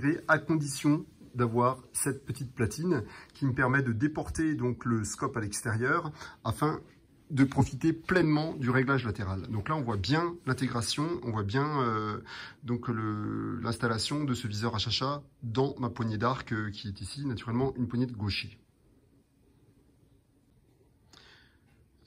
à condition d'avoir cette petite platine qui me permet de déporter donc le scope à l'extérieur afin de profiter pleinement du réglage latéral. Donc là, on voit bien l'intégration, on voit bien donc l'installation de ce viseur HHA dans ma poignée d'arc qui est ici, naturellement, une poignée de gaucher.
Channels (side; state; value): both; identical; correlation 1.00